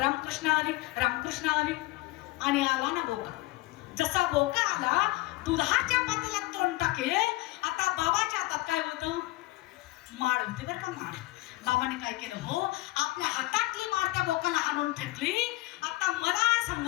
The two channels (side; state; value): right; quieter; 19.6 dB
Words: हरी रामकृष्ण हरी. आणि आला ना बोका. जसा बोका आला दुधाच्या पातेल्यात तोंड टाकेल. आता बाबाच्या हातात काय होतं? माळ होती बरं का. माळ बाबाने काय केलं हो आपल्या हातातली माळ त्या बोकाला आणून फेकली. आता मला